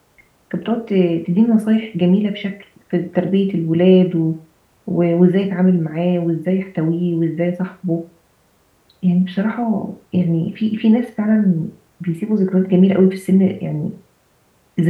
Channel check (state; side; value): identical; both; correlation 1.00